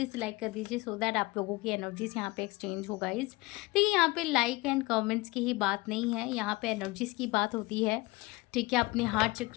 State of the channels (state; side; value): quieter; right; 23.0 dB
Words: से लाइक कर दीजिए, सो दैट आप लोगों की एनर्जीज यहाँ पे एक्सचेंज हो गाइस। देखिए यहाँ पे लाइक एंड कमेंट्स की ही बात नहीं है, यहाँ पे एनर्जीज की बात होती है, ठीक है। अपने हार्ट